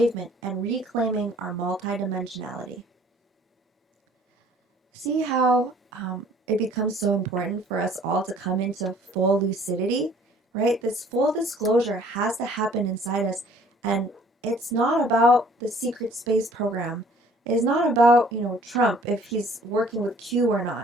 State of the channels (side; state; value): both; normal; correlation 0.56